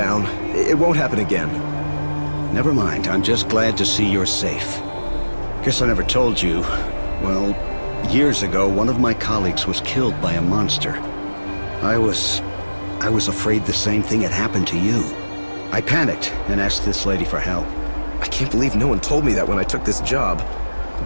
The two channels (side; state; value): both; inverted; correlation -1.00